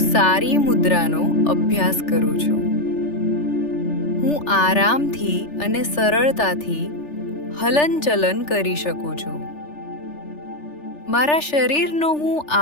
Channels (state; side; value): late; right; 3.4 ms